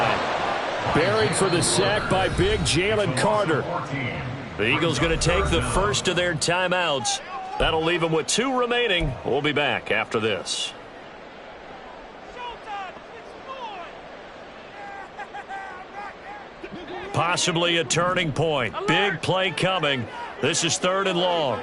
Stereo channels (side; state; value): both; identical; correlation 1.00